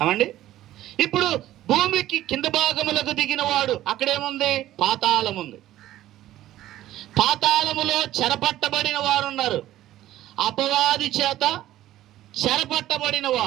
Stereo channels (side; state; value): left; quieter; 14.0 dB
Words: అవండి, ఇప్పుడు భూమికి కింద భాగములకు దిగిన వాడు అక్కడేముంది? పాతాళం ఉంది. పాతాళములో చెరపట్టబడిన వారు ఉన్నారు. అపవాది చేత చెరపట్టబడిన